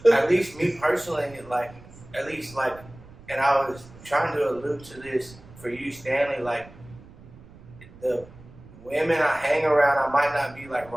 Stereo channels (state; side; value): noise; right; rumble, 20 dB below the sound